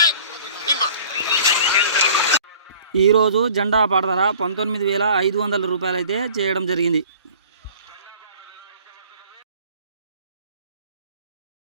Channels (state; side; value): inverted; both; correlation -0.49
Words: ఈరోజు జెండా పాట ధర 19,500 రూపాయలు అయితే చేయడం జరిగింది.